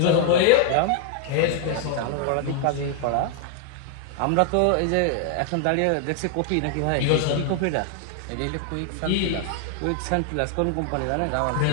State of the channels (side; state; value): both; different; correlation 0.00